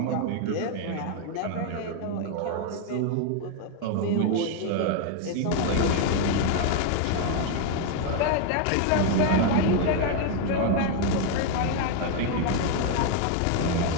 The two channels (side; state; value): both; different; correlation 0.00